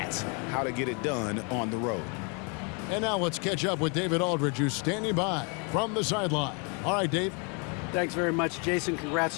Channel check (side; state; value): right; quieter; 35.0 dB